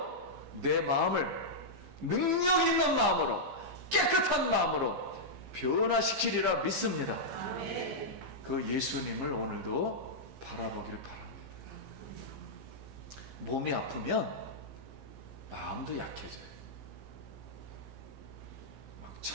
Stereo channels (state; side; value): late; left; 15 ms